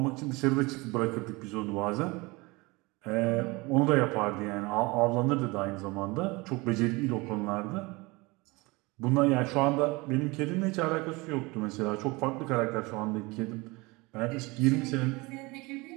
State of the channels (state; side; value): quieter; left; 24.3 dB